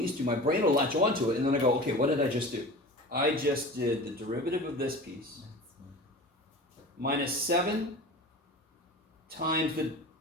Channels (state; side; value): normal; both; correlation 0.35